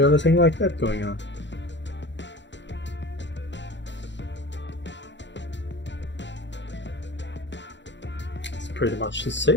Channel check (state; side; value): late; right; 0.52 ms